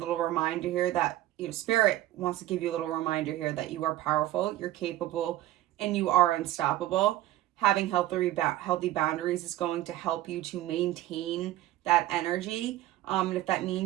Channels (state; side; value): quieter; left; 14.9 dB